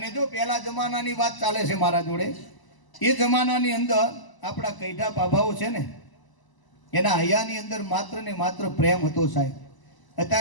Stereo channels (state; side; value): late; right; 1.0 ms